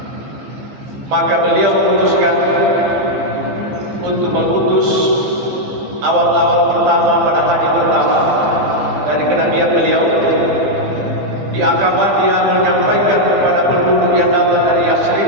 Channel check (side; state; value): left; late; 15 ms